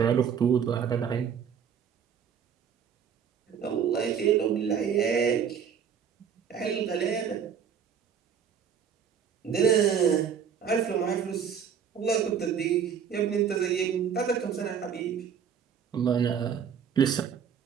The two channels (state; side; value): quieter; left; 7.5 dB